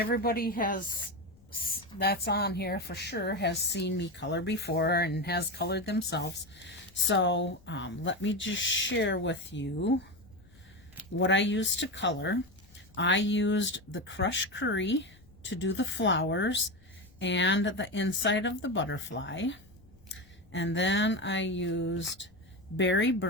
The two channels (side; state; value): left; noise; rumble, 27 dB below the sound